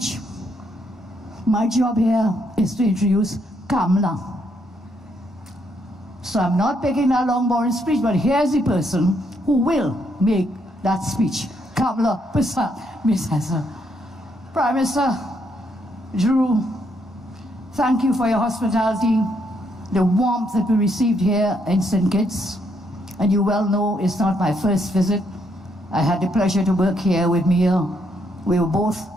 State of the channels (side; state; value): both; normal; correlation 0.74